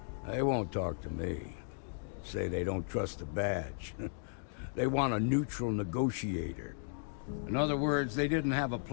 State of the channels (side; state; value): right; silent; digital silence